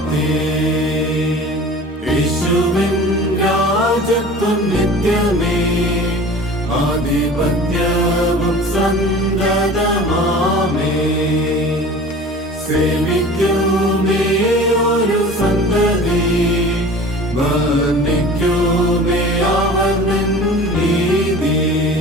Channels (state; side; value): normal; both; correlation 0.41